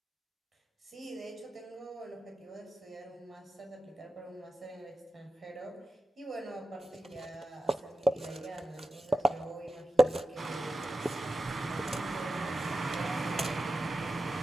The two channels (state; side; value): normal; both; correlation 0.92